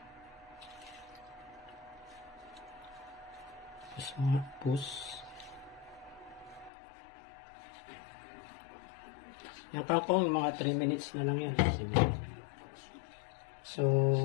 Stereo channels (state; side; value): drops out; right; at 6.7 s